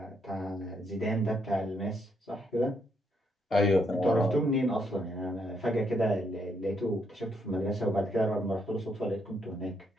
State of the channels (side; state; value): both; normal; correlation 0.75